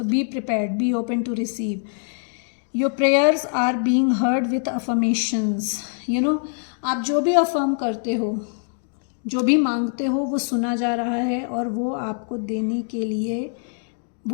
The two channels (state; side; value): silent; right; 62 dB below the other